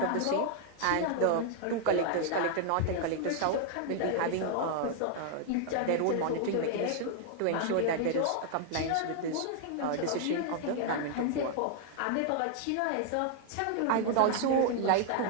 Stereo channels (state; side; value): different; both; correlation 0.00